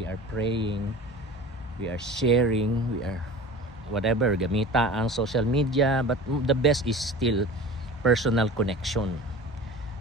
are praying, we are sharing, we are whatever, gamita ang social media, but the best is still personal connection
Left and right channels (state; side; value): normal; both; correlation 0.37